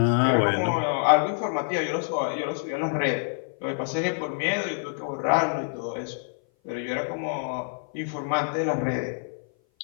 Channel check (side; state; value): right; silent; 57 dB below the other